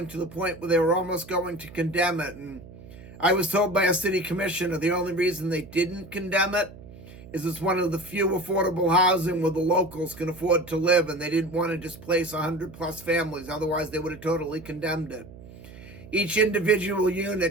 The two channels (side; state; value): right; noise; hum, 18 dB below the sound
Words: to the point where they were almost going to condemn it, and I was told by a city commissioner the only reason they didn't condemn it is it's one of the few affordable housing where the locals can afford to live, and they didn't want to displace 100+ families. Otherwise, they would have totally condemned it. Each individual